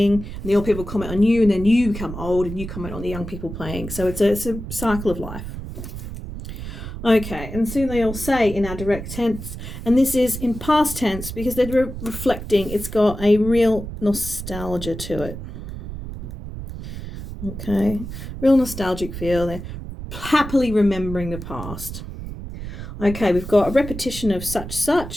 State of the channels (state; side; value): noise; right; rumble, 9 dB below the sound